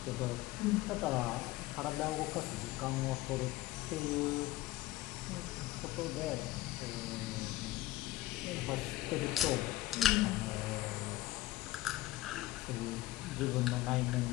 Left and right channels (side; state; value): right; quieter; 16.6 dB